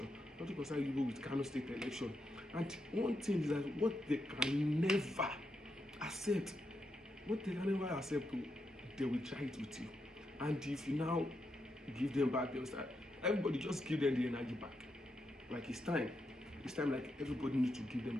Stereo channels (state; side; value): normal; both; correlation 0.83